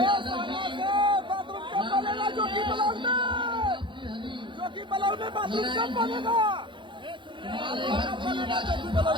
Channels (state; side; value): late; left; 0.23 ms